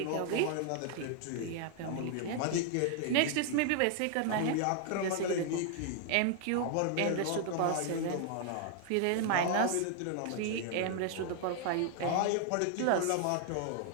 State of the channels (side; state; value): both; different; correlation 0.00